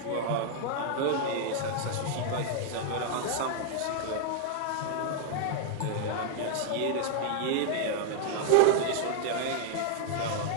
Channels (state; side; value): different; both; correlation 0.00